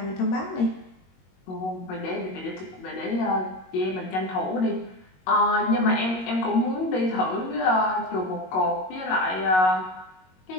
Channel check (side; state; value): right; late; 22 ms